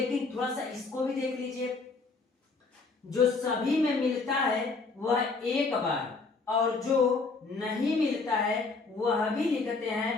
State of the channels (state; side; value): quieter; right; 4.1 dB